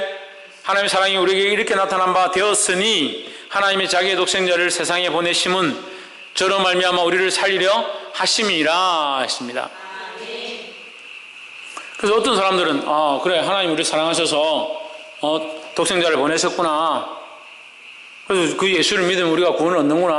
하나님의 사랑이 우리에게 이렇게 나타난 바 되었으니 하나님의 자기의 독생자를 세상에 보내심은 저로 말미암아 우리를 살리려 하심이라 했습니다. 그래서 어떤 사람들은 그래 하나님 우리를 사랑하셔서 독생자를 보내셨구나. 그래서 그 예수를 믿으면 우리가 구원을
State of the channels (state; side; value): identical; both; correlation 1.00